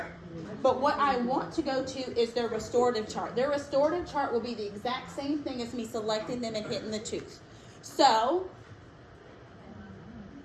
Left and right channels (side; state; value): both; identical; correlation 1.00